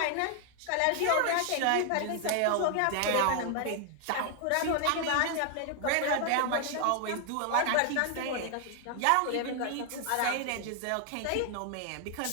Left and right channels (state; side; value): different; both; correlation 0.00